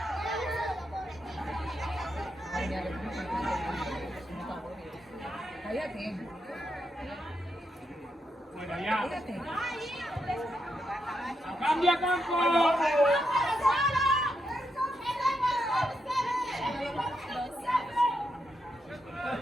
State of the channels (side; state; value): both; normal; correlation 0.82